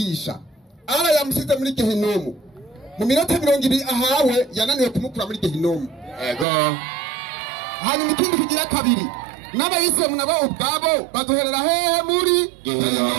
Ara yamusize muri Gehinomu. Mu minota 20 ahawe yananiwe kumukura muri Gehinomu. Ego. Hanyuma ikindi kigira kabiri. N'abayisilamu nabo ubwabo bazoherera hehe muri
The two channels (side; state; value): left; drops out; at 6.5 s